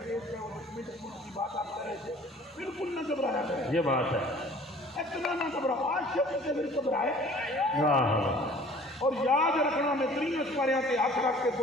کیس کا اور کی بات آپ کر رہے تھے، بالکل نہ گھبرایا کریں، یہ بات ہے، اتنا نہ گھبراؤ، عاشق سے پھر گھبرائے، واہ اور یاد رکھنا میں 3 اسپاریاں تے ہاتھ رکھ کے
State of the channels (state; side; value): normal; both; correlation 0.50